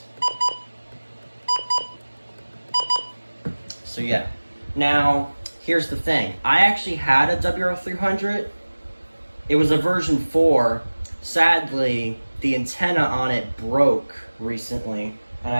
So yeah. Now, here's the thing. I actually had a WR300. It was a version 4. Sadly, the antenna on it broke recently, and I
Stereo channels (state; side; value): inverted; both; correlation -1.00